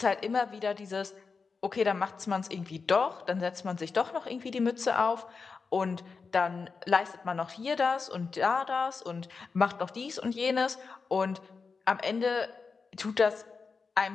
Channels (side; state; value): right; quieter; 4.9 dB